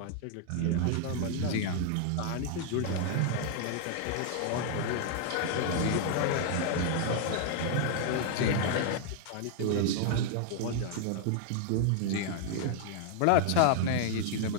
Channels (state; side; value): different; both; correlation 0.00